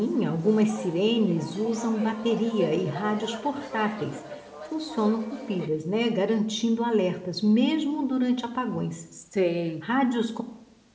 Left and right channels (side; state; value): both; identical; correlation 1.00